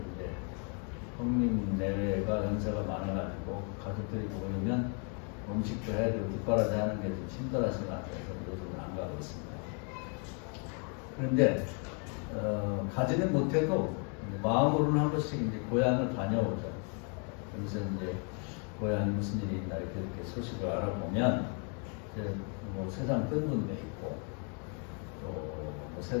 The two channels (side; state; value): right; quieter; 39.0 dB